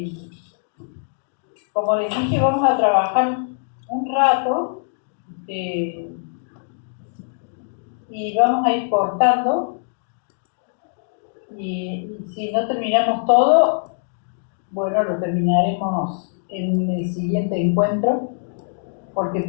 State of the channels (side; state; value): right; silent; digital silence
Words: como les dije, vamos a trabajar un rato y vamos a ir cortando y si no terminamos todo, bueno, lo terminaremos en el siguiente encuentro porque